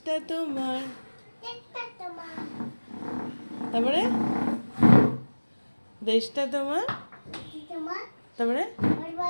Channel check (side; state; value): both; inverted; correlation -1.00